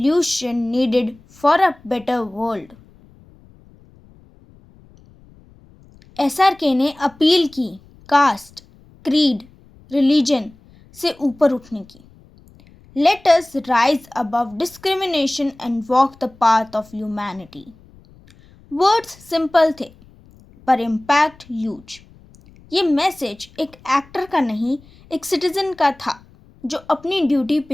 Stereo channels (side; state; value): left; noise; rumble, 26 dB below the sound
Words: needed for a better world. SRK ने अपील की कास्ट, क्रीड, रिलीजन से ऊपर उठने की। Let us rise above discrimination and walk the path of humanity. Words simple थे, पर इम्पैक्ट ह्यूज। ये मैसेज एक एक्टर का नहीं, एक सिटीजन का था जो अपनी ड्यूटी